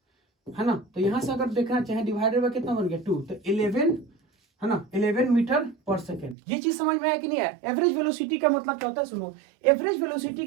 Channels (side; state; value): left; drops out; at 6.4 s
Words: है ना। तो यहां से अगर देखना चाहे डिवाइडेड बाय कितना बन गया 2, तो 11, है ना, 11 मीटर पर सेकेंड। ये चीज समझ में आया कि नहीं आया। एवरेज वेलोसिटी का मतलब क्या होता है, सुनो। एवरेज वेलोसिटी